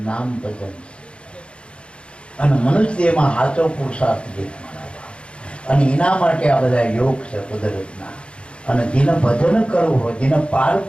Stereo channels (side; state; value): right; late; 0.057 ms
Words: નામ ભજન છે. અને મનુષ્ય એમાં સાચો પુરુષાર્થ જે અને એના માટે આ બધા યોગ છે કુદરતના. અને જેને ભજન કરવું હોય જેને પાર